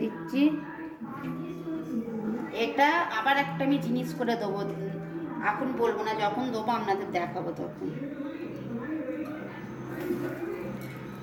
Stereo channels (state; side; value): identical; both; correlation 1.00